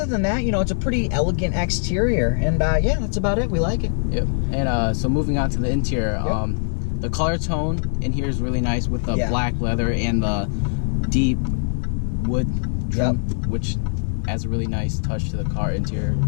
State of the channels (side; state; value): right; silent; digital silence